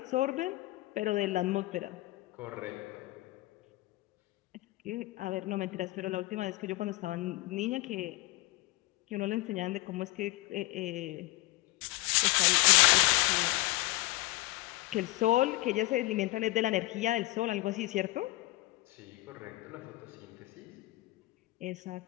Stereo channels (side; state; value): right; quieter; 20.1 dB